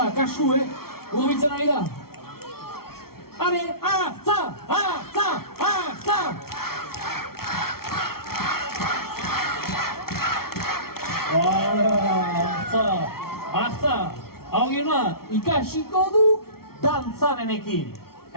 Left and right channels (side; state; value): right; late; 0.94 ms